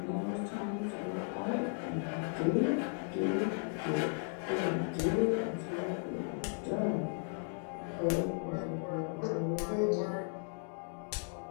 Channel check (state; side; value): silent; right; 54 dB below the other